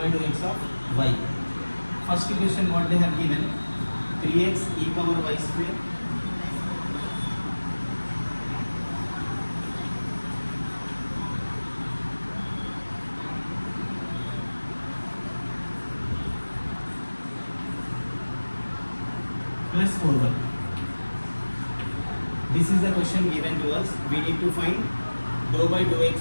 dou x of y. First equation what they have given, 3x e power y square plus 4y. This is the question given to us. We need to find dou by dou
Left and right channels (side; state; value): both; inverted; correlation -1.00